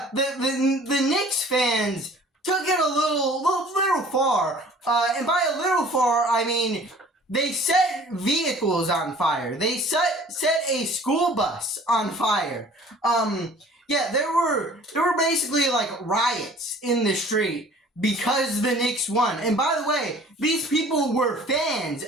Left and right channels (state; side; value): normal; both; correlation 0.50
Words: Knicks fans took it a little far, and by a little far, I mean they set vehicles on fire. They set a school bus on fire. There were basically like riots in the street because the Knicks won. And by the way, these people were fans